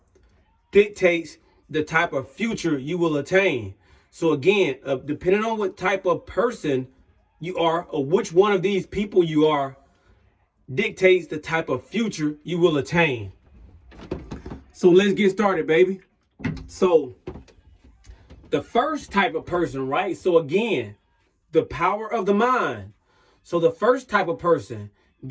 dictates the type of future you will attain. So again, depending on what type of person you are or which one of these people you are, dictates the type of future you will attain. So let's get started, baby. So the first type of person, right? So again, the power of the mind. So the first type of person,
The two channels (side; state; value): both; identical; correlation 1.00